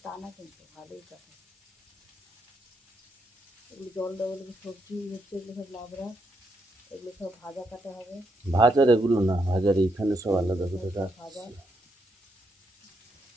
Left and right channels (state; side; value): normal; both; correlation 0.79